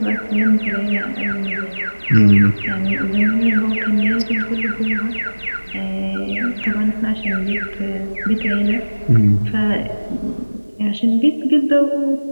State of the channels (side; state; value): both; inverted; correlation -1.00